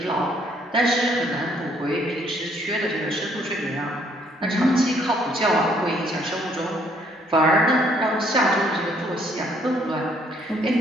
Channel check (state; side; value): normal; both; correlation 0.66